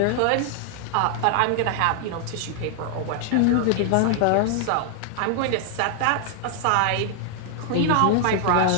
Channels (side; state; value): both; different; correlation 0.00